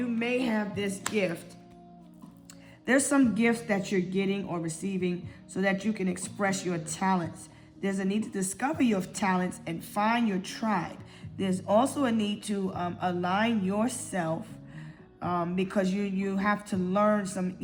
may have this gift. There's some gifts that you're getting or receiving so that you can express your talents. There's a need to discover your talents and find your tribe. There's also a need to align yourself because you have to learn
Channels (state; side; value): identical; both; correlation 1.00